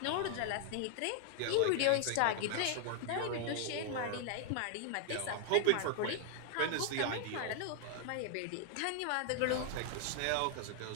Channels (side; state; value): both; different; correlation 0.00